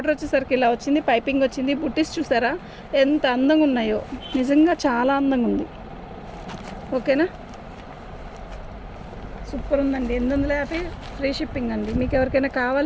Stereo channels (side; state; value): both; identical; correlation 1.00